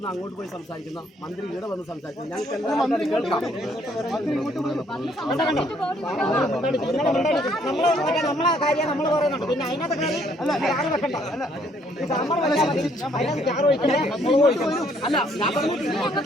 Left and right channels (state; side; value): normal; both; correlation 0.66